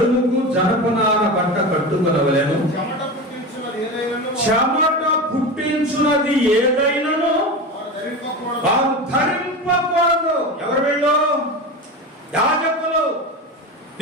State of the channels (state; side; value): normal; both; correlation 0.25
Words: జనపనార బట్ట కట్టుకొనవలెను. చెమట పుట్టించున్నది ఏదైనాను వారు ధరింపకూడదు. ఎవరు వీళ్ళు? యాజకులు.